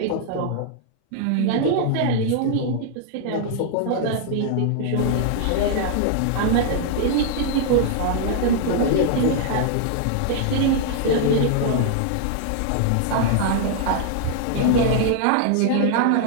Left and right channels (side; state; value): both; different; correlation 0.00